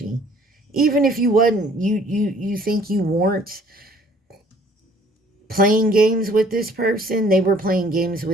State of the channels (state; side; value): normal; both; correlation 0.57